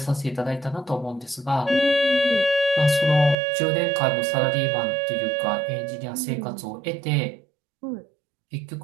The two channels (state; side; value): drops out; left; at 3.4 s